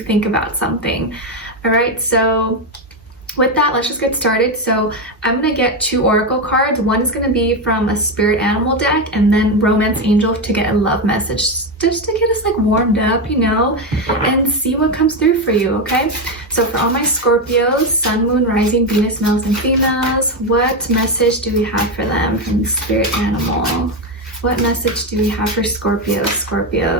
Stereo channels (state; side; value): normal; both; correlation 0.10